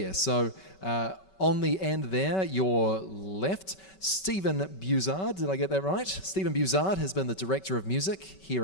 So on the end there, your left, Stephen Buzard, did I get that right? Stephen Buzard has been the Director of Music here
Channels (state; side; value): late; right; 5.3 ms